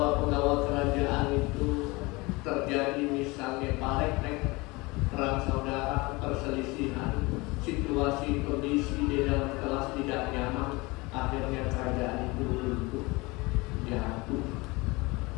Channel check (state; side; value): quieter; right; 24.2 dB